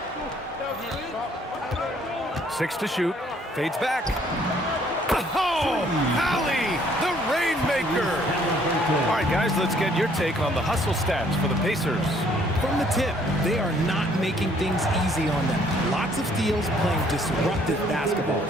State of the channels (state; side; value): normal; both; correlation 0.63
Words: 6 to shoot. Fades back. Oh, Hallie, the Rainmaker. All right, guys, let's get your take on the hustle stats for the Pacers. From the tip, they are not making things easy on them. Lots of steals, playing disruptive basketball.